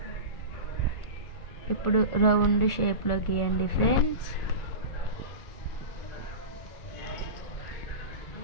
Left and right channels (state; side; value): late; right; 1.4 ms